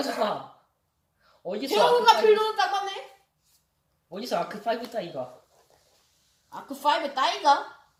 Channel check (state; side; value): identical; both; correlation 1.00